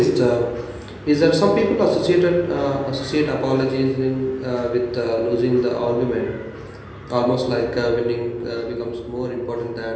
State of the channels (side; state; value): both; identical; correlation 1.00